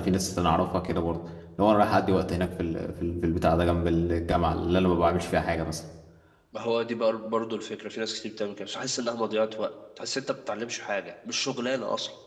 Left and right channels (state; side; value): identical; both; correlation 1.00